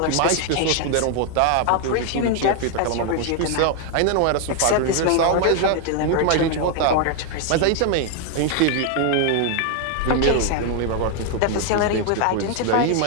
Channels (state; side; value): different; both; correlation 0.00